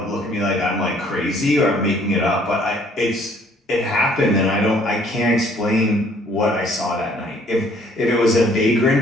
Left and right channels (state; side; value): normal; both; correlation 0.60